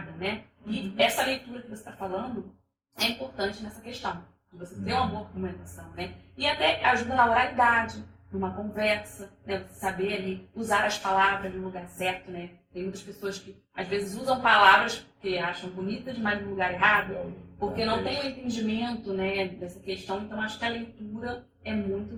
né? E essa leitura que você está falando é importante nessa questão. De você ter uma boa argumentação, né? E até ajuda na oralidade, numa conversa, né? Você saber ali usar as palavras no lugar certo, né? Tem muitas pessoas que às vezes usam palavras que acham bonitas, mas no lugar errado, porque não tem o entendimento, né, dessa questão. Então acho que a leitura é muito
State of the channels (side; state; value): both; identical; correlation 1.00